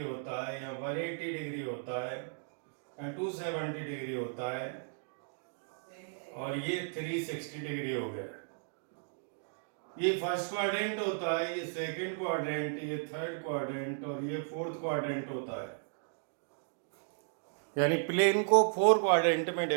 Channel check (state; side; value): silent; left; digital silence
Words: होता है, यहाँ 180 डिग्री होता है, यहाँ 270 डिग्री होता है, और ये 360 डिग्री हो गया। ये फर्स्ट क्वाड्रेंट होता है, ये सेकंड क्वाड्रेंट, ये थर्ड क्वाड्रेंट और ये फोर्थ क्वाड्रेंट होता है। यानी प्लेन को 4 क्वाड्रेंट में